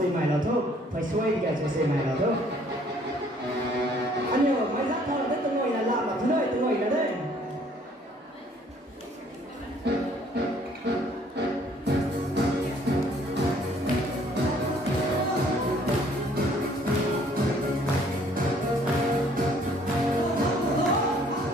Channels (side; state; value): both; normal; correlation 0.60